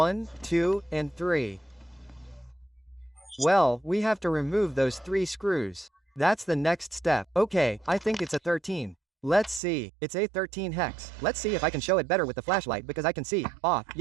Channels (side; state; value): left; drops out; at 9.6 s